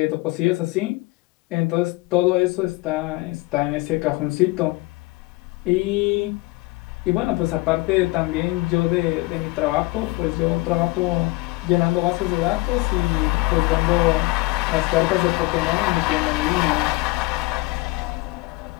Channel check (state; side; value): quieter; right; 22.9 dB